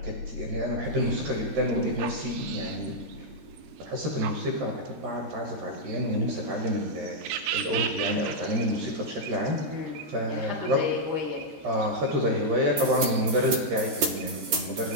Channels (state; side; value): late; left; 13 ms